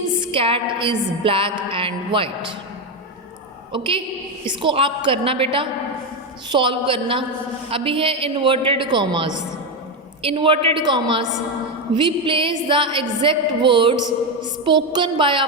cat is black and white. Okay, इसको आप करना बेटा, सॉल्व करना। अभी है inverted commas. Inverted commas, we place the exact words spoken by a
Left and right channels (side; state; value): both; normal; correlation 0.09